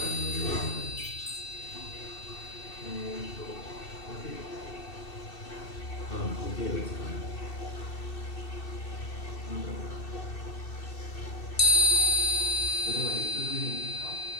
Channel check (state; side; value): late; right; 2.7 ms